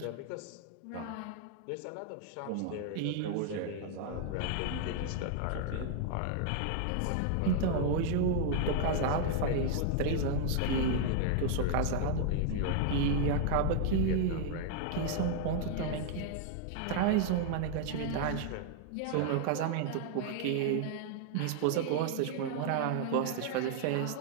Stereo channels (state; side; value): different; both; correlation 0.00